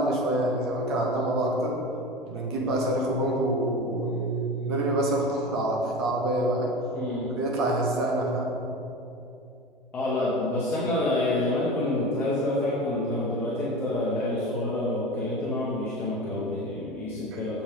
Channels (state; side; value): normal; both; correlation 0.30